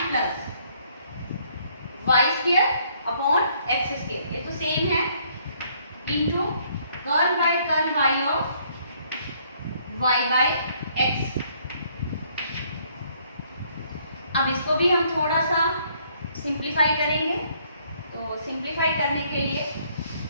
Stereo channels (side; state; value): both; inverted; correlation -0.66